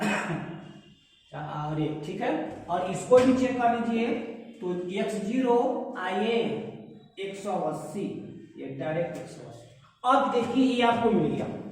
और 1। ठीक है, और इसको भी चेक कर लीजिए तो x0 आइए 180, ये डायरेक्ट 180। अब देखिए ये आपको मिल गया,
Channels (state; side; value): identical; both; correlation 1.00